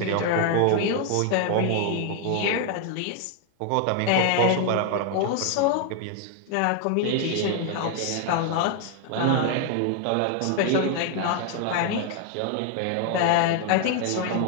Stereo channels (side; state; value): both; different; correlation 0.01